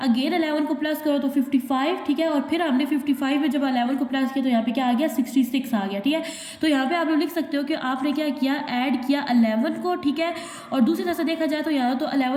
अगेन 11 को प्लस करो तो 55, ठीक है। और फिर हमने 55 में जब 11 को प्लस किया तो यहाँ पे क्या आ गया 66 आ गया, ठीक है। तो यहाँ पे आप लोग लिख सकते हो कि आपने क्या किया ऐड किया 11 को, ठीक है। और दूसरी तरह से देखा जाए तो यहाँ तो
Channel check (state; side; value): identical; both; correlation 1.00